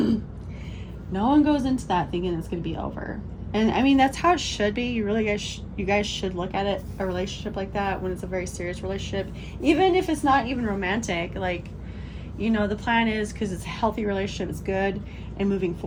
No one goes into that thinking it's going to be over. And I mean, that's how it should be. You guys should look at it, a relationship like that, when it's a very serious relationship, even if it's not even romantic. Like, you know, the plan is, because it's a healthy relationship, it's good, and moving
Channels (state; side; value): identical; both; correlation 1.00